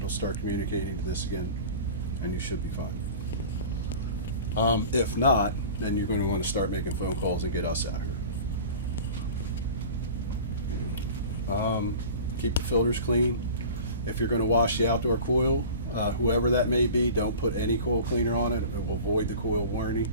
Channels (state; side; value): inverted; both; correlation -0.38